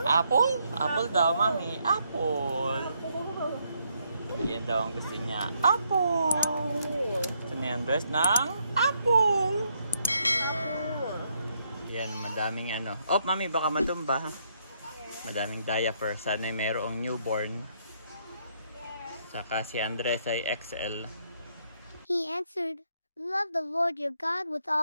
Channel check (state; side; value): inverted; both; correlation -0.74